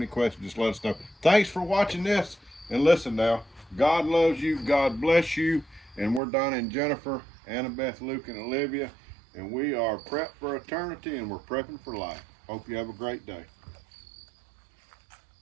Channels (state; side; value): drops out; left; at 6.2 s